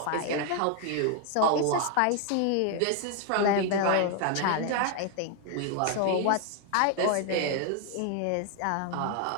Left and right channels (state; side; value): different; both; correlation 0.00